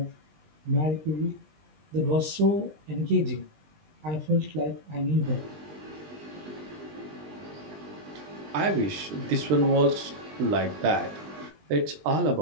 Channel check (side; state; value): left; late; 20 ms